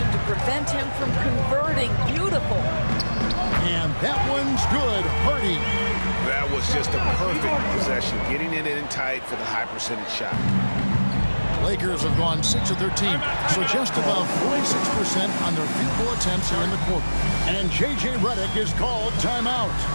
to prevent him from converting. Beautiful. And that one's good. Hardy. That was just a perfect possession, getting it in tight for the high percentage shot. Lakers have gone 6 of 13, so just about 46% on their field goal attempts here in the quarter. And J.J. Redick is called timeout.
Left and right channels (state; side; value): inverted; both; correlation -1.00